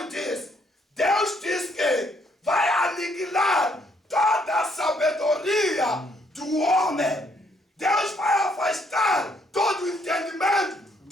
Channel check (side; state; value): both; normal; correlation 0.69